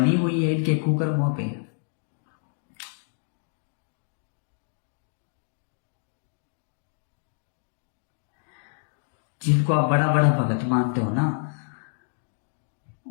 हुई है इनके कुकर्मों पे। जिनको आप बड़ा बड़ा भगत मानते हो ना,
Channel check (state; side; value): silent; right; digital silence